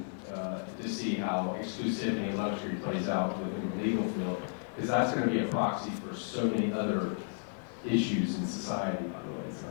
to see how exclusivity and luxury plays out within the legal field, because that's going to be a proxy for so many other issues in society, by the way. It's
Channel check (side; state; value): right; silent; 56 dB below the other